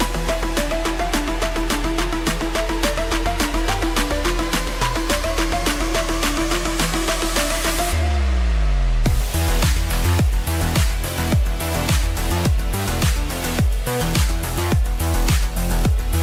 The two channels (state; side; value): identical; both; correlation 1.00